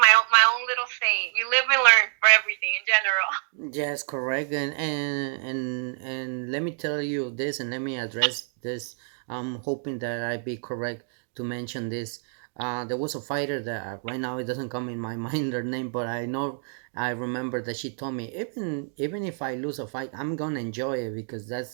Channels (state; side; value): silent; left; 60 dB below the other